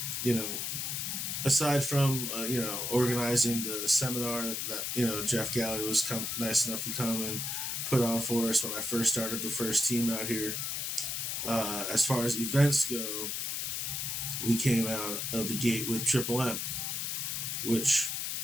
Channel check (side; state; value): left; noise; hiss, 2 dB below the sound